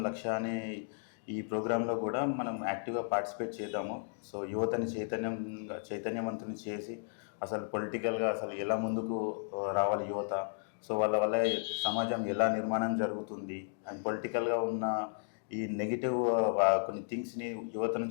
లక్ష్య అనే ఈ ప్రోగ్రాంలో కూడా మనం యాక్టివ్గా పార్టిసిపేట్ చేద్దాము. సో యువతని చైతన్యవంతుని చేసి అసలు పొలిటికల్గా అసలు ఎలా ముందుకు రావాలి యువత, సో వాళ్ళ వల్ల సమాజం ఎలా నిర్మాణం జరుగుతుంది అండ్ పొలిటికల్గా ఉన్న ఈ నెగిటివ్ కొన్ని థింగ్స్ని యువత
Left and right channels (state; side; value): silent; right; digital silence